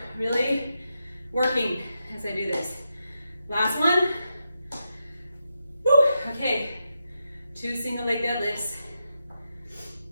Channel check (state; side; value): inverted; both; correlation -0.85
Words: really working as I do this. Last one. Woo. Okay, 2 single leg deadlifts.